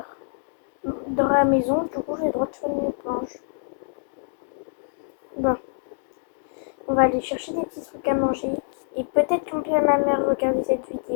dans la maison, du coup j'ai le droit de faire une nuit blanche. Bon, on va aller chercher des petits trucs à manger. Et peut-être qu'on peut ma mère regarder cette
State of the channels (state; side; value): silent; right; digital silence